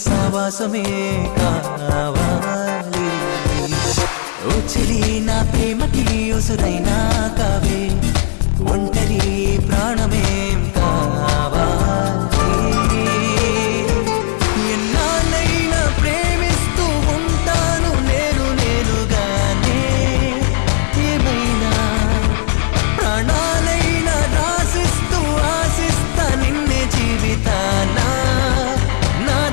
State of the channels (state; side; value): silent; right; 59 dB below the other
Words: సావాసమే కావాలి ఓ చెలి నా ప్రేమకి ఉసురైనా కావే ఒంటరి ప్రాణమేం కావాలి ఎన్నాళ్ళైనా ప్రేమిస్తూ ఉంటాను నేనుగానే ఏమైనా ప్రాణాలైనా రాసిస్తూ ఆశిస్తా నిన్నే జీవితానా